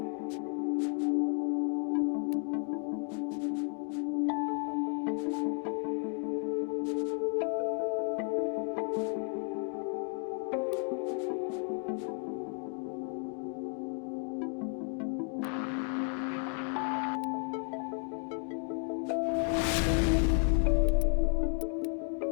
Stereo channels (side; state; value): right; quieter; 40.0 dB